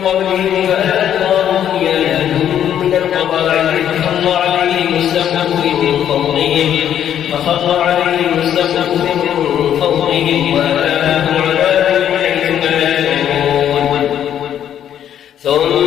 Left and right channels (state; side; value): quieter; right; 10.0 dB